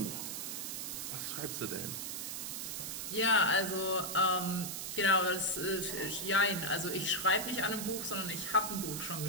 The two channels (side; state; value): right; noise; hiss, 4 dB below the sound